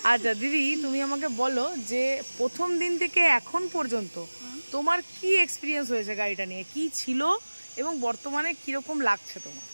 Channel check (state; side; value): inverted; both; correlation -1.00